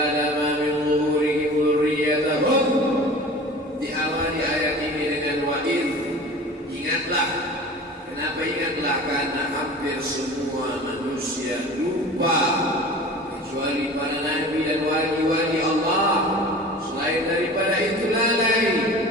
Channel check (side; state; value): both; normal; correlation 0.39